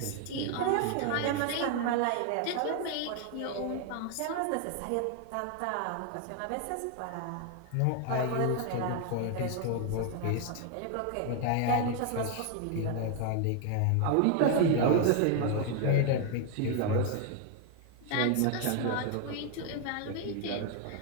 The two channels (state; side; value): different; both; correlation 0.01